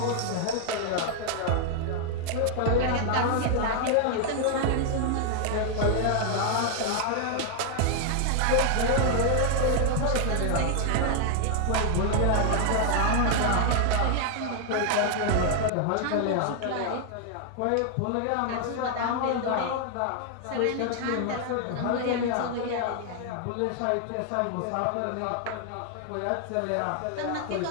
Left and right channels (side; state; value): both; different; correlation 0.00